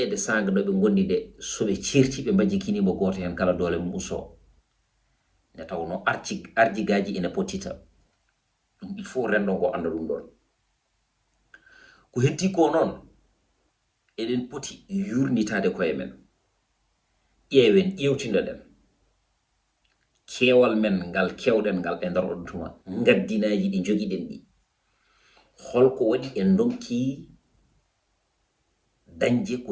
sanga no ɓe gondi nde soɓe certi ɓe majjikinimo goto hen kala doole mum usto nde tawno arjigaji ene pottita ɗum il faut rendo ngo anda ɗum ɗon ko heddi ko noon eɗen poti yurnitade koye men ƴeewen ƴewtinoɗen keewal men ngal kewɗen ngal e nder ɗon tuma gaddinaji ɗi jogiɗen ɗi holko waɗi en donki dañje ko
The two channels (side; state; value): both; identical; correlation 1.00